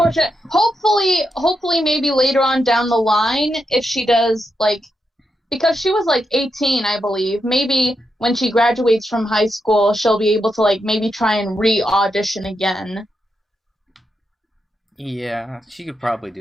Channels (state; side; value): normal; both; correlation 0.84